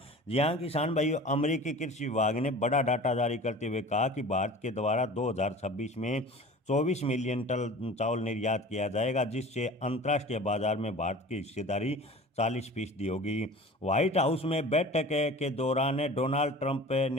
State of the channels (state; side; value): normal; both; correlation 0.40